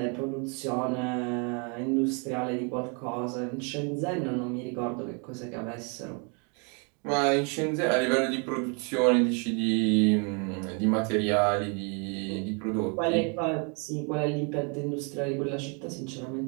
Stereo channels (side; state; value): left; quieter; 36.1 dB